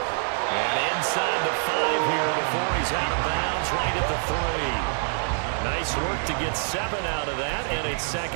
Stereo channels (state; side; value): silent; left; digital silence